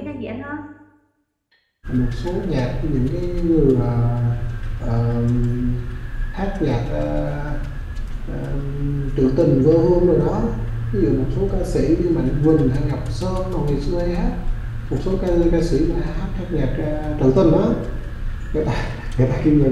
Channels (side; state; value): both; identical; correlation 1.00